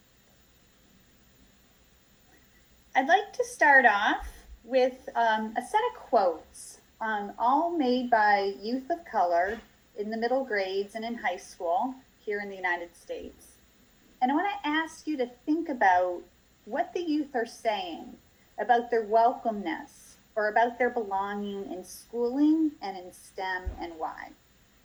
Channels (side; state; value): both; identical; correlation 1.00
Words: I'd like to start off with a set of quotes, all made by youth of color in the middle grades and in high school here in the United States. And I want to ask you to think about what the youth are saying about their welcomeness or about their belonging in schooling and in STEM and why.